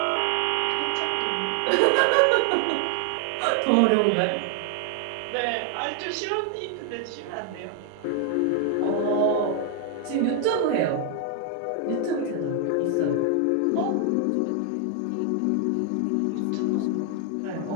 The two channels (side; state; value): both; different; correlation 0.00